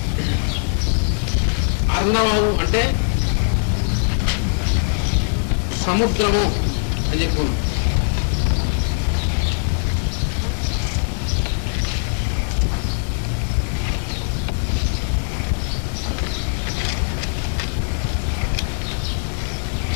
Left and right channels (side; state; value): right; silent; digital silence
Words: అర్ణవము అంటే సముద్రము అని చెప్పుకున్నాం.